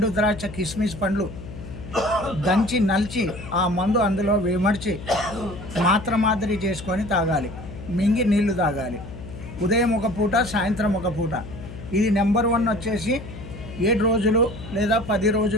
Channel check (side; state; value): left; noise; hum, 12 dB below the sound